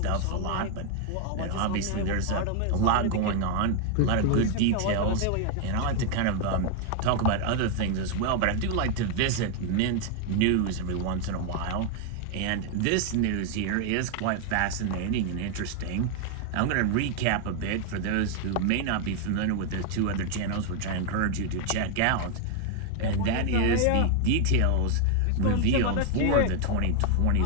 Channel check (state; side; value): different; both; correlation 0.00